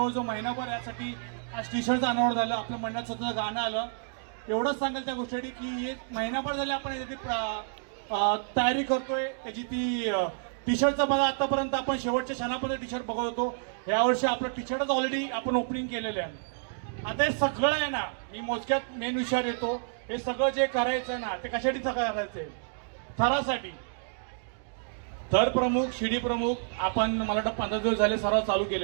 महिनाभर यासाठी आज टी शर्टचं अनावरण झालं, आपल्या मंडळात स्वतःचं गाणं आलं. एवढंच सांगेल त्या गोष्टीसाठी की एक महिनाभर झाले आपण यासाठी तयारी करतोय. त्याची ती टी शर्टचं बघा, आतापर्यंत आपण शेवटच्या क्षणापर्यंत टी शर्ट बघत होतो. यावर्षी आपलं टी शर्टच ऑलरेडी आपण ओपनिंग केलेलं आहे. आता हे सगळं आहे ना, मी मोजक्यात मेन विषयावर येतो. हे सगळं जे करायचं ना ते कशासाठी सगळं करायचंय? थरासाठी. थर प्रमुख, शिडी प्रमुख आपण मला वाटतं 15 दिवस झाले सराव चालू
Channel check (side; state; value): left; silent; digital silence